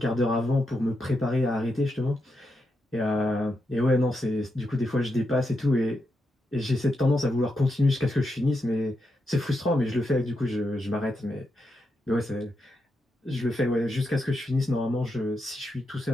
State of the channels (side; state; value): both; normal; correlation 0.84